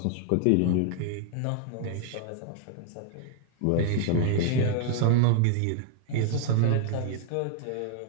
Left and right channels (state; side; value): different; both; correlation 0.00